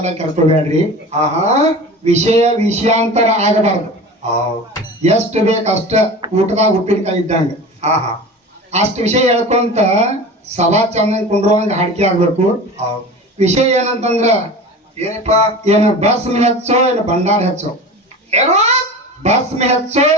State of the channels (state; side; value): normal; both; correlation 0.34